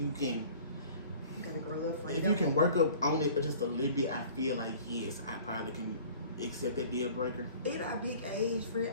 can. You gotta grow up for it. If you can work up on it just a little bit, I feel like yes, I probably can accept that deal breaker. At our big age, friend,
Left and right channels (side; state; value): both; inverted; correlation -0.47